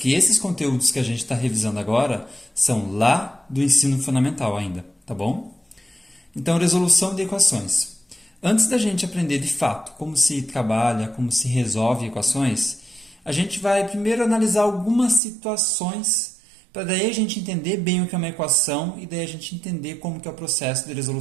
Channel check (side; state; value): left; drops out; at 15.2 s